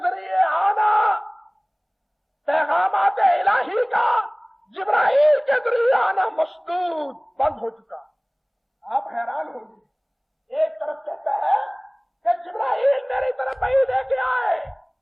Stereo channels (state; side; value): identical; both; correlation 1.00